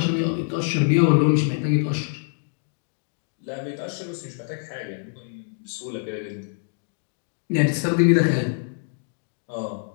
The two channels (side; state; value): right; silent; digital silence